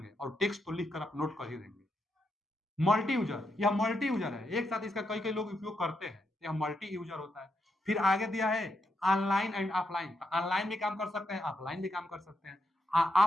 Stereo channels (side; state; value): both; normal; correlation 0.81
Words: और टेक्स्ट तो लिखकर आप नोट कर ही देंगे। मल्टी यूजर, यह मल्टी यूजर है, एक साथ इसका कई कई लोग उपयोग करते हैं, यह मल्टी यूजर होता है। फिर आगे दिया है ऑनलाइन एंड ऑफलाइन, ऑनलाइन भी काम कर सकते हैं, ऑफलाइन भी काम कर सकते हैं।